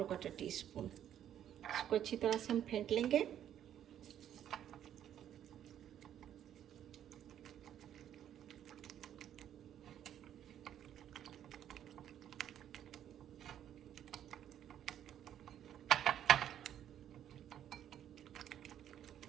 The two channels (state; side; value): quieter; left; 10.5 dB